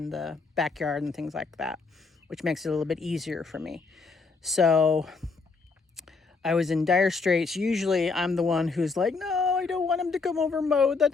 backyard and things like that, which makes it a little bit easier for me. So I was in dire straits. Usually I'm the one who's like, no, I don't want him to come over and mow. The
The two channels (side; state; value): right; quieter; 4.3 dB